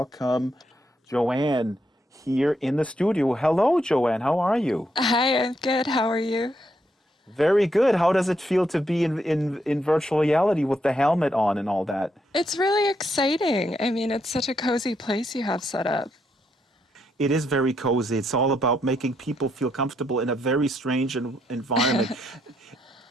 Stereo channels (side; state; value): both; normal; correlation 0.78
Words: Joanne here in the studio. Hello, Joanne. How are you? Hi, I'm good. How are you? Very good. How does it feel to be in virtual reality with the helmet on and all that? It's really exciting. I mean, it's such a cozy place you have set up. It is very cozy. It's all about making people feel comfortable in a very strange environment.